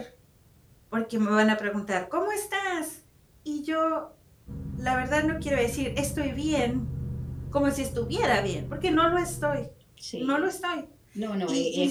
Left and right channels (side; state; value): both; identical; correlation 1.00